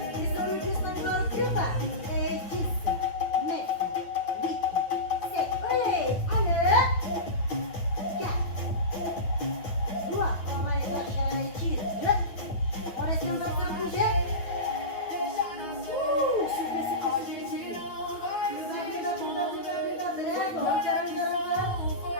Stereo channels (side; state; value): right; late; 8.9 ms